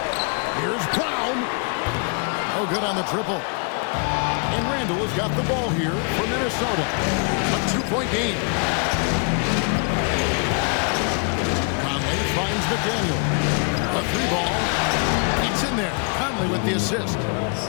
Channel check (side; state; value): right; quieter; 38.4 dB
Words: Here's Brown. Oh, good on the triple. And Randall has got the ball here for Minnesota. A 2-point game. Conley finds McDaniel. A 3-ball. It's in there. Conley with the assist.